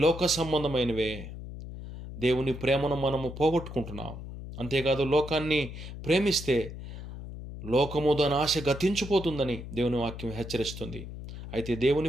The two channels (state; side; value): noise; left; hum, 10 dB below the sound